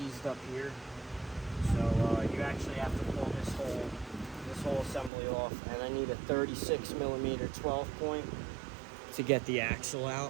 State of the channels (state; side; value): drops out; left; at 5.1 s